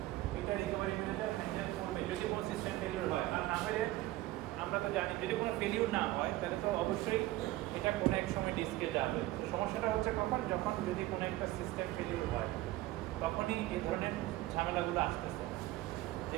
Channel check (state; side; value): quieter; left; 17.1 dB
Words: এটা রিকভারি ম্যানেজার হ্যান্ডেল করবে যদি কোনো সিস্টেম ফেলিওর হয়। আর না হলে আমরা তো জানি যদি কোনো ফেলিওর না হয় তাহলে তো অবশ্যই এটা কোনো এক সময় ডিস্কে যাবে। তো সমস্যাটা হচ্ছে কখন, যখন যদি কোনো একটা সিস্টেম ফেলিওর হয় তখনই এই ধরনের ঝামেলাগুলো আসতেছে যে